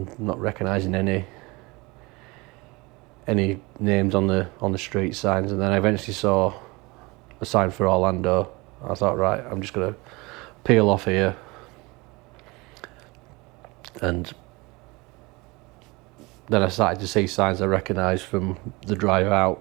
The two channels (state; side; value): quieter; left; 24.6 dB